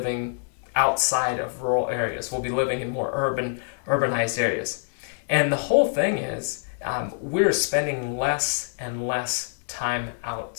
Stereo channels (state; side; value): silent; right; digital silence